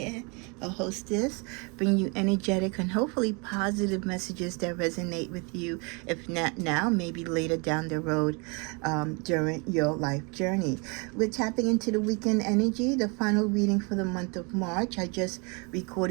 a hostess, bringing you energetic and hopefully positive messages that resonate with you. If not now, maybe later down the road during your life journey. We're tapping into the weekend energy, the final reading for the month of March. I just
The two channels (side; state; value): left; quieter; 31.8 dB